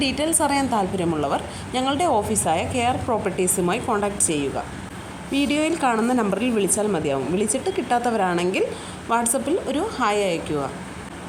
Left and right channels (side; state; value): both; identical; correlation 1.00